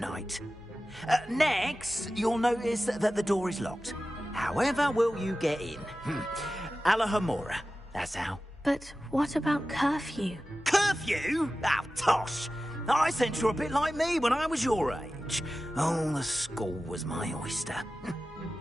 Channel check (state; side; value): normal; both; correlation 0.95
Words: Next, you'll notice that the door is locked. However will you get in? Alahomora, that's how. But what about curfew? Curfew? Oh, tosh. I sense you're a bit like me when I was your age. Oh, the school was my oyster.